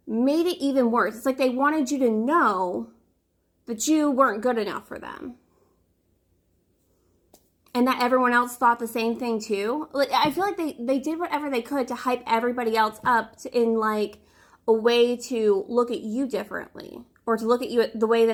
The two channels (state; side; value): identical; both; correlation 1.00